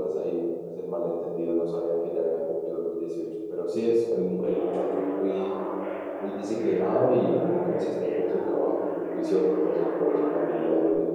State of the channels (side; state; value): both; identical; correlation 1.00